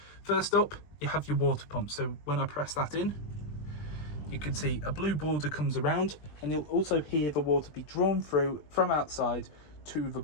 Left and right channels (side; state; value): right; late; 20 ms